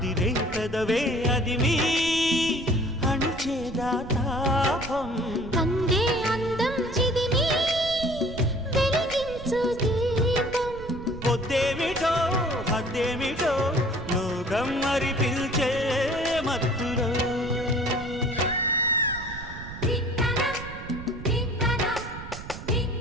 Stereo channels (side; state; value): right; noise; rumble, 12 dB below the sound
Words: పెదవే అదిమి అణిచేదా తాపం కందే అందం చిదిమి వెలిగించు దీపం పొద్దేమిటో హద్దేమిటో లోకం మరి పిల్చే మత్తులో